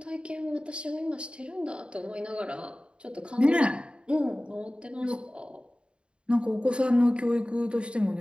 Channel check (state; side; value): late; left; 0.055 ms